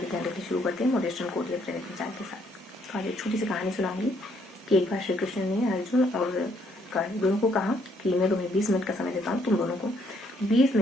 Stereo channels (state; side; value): normal; both; correlation 0.69